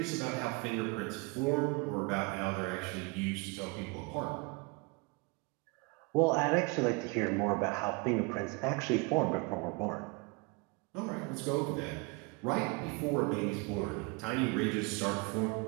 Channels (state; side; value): quieter; left; 28.0 dB